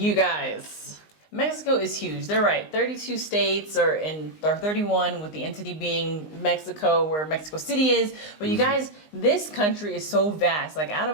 guys, Mexico is huge. They're right. 32 states or 31 with the entity being Mexico, where Mexico City is. But you guys, this country is so vast. Like out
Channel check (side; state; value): right; late; 19 ms